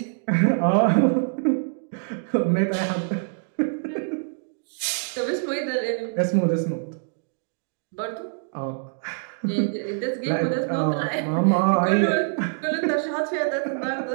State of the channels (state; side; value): silent; left; digital silence